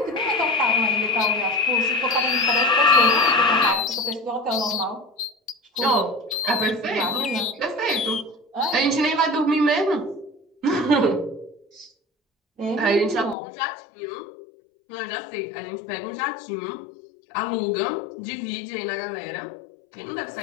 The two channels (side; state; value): right; drops out; at 13.4 s